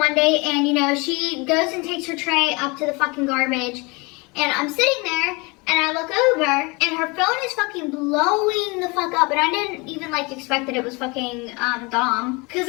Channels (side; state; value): right; quieter; 27.4 dB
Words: day, and you know, she goes and takes her tray up to the fucking garbage, and I'm sitting there, and I look over, and her phone is fucking blowing the fuck up, and I didn't even like expect that it was fucking Dom, because